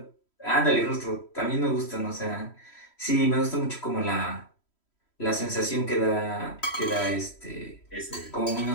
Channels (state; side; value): late; right; 3.1 ms